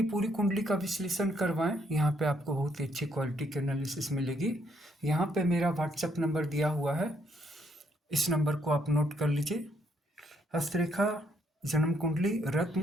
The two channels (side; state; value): both; normal; correlation 0.72